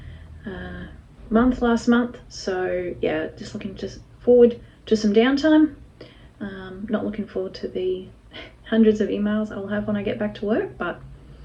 month last month, so yeah, just looking forward to some downtime. Not looking forward to the hundreds of emails I'll have when I get back to work, but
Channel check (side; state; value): both; identical; correlation 1.00